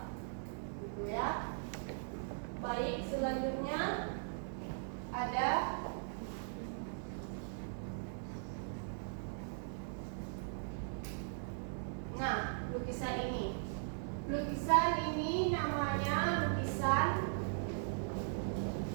gitu ya. Baik, selanjutnya ada lukisan ini. Lukisan ini namanya lukisan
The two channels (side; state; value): left; silent; 52 dB below the other